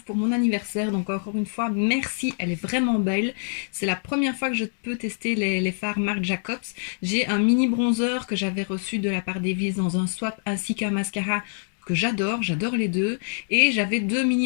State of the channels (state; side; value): silent; right; digital silence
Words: pour mon anniversaire, donc encore une fois merci, elle est vraiment belle. C'est la première fois que je peux tester les fards Marc Jacobs. J'ai un mini bronzer que j'avais reçu de la part d'Evis dans un swap ainsi qu'un mascara que j'adore les deux, et j'avais deux